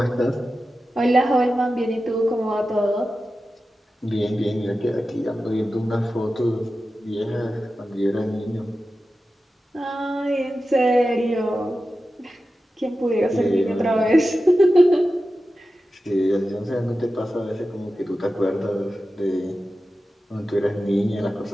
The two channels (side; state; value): both; normal; correlation 0.93